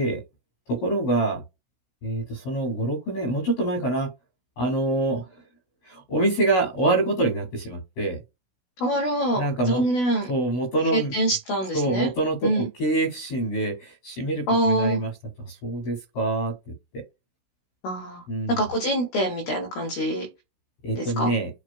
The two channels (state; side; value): late; right; 16 ms